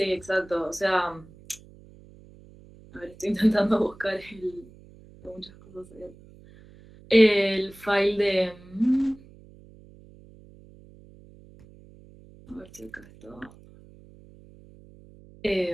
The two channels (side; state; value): right; noise; hum, 23 dB below the sound